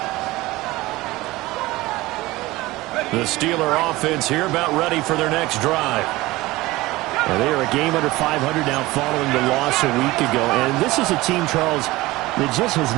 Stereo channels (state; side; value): quieter; left; 19.4 dB